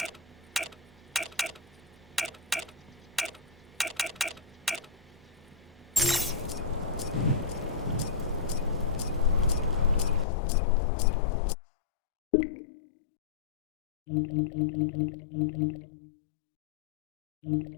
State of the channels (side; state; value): right; drops out; at 10.2 s